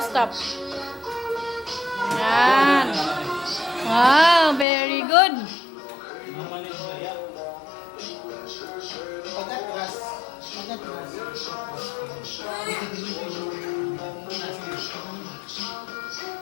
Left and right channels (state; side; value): drops out; right; at 4.7 s